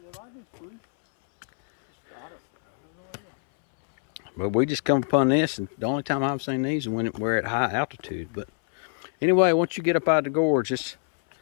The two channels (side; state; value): right; silent; 62 dB below the other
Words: But we just come upon this, and the only time I've seen these is when we're at high altitude. But anyway, once you get up out of the gorge, it's